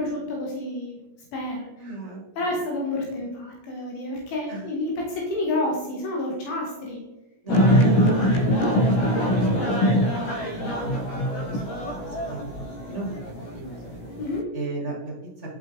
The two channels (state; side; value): late; right; 17 ms